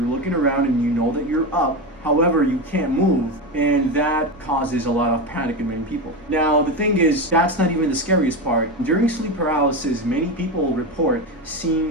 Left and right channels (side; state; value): both; normal; correlation 0.17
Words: looking around and you know that you're up. However, you can't move, and that causes a lot of panic in many people. Now, the thing is, that's not even the scariest part. During sleep paralysis, many people report